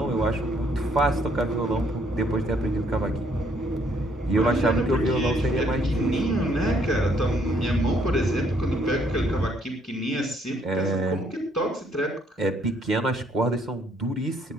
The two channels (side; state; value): both; normal; correlation 0.68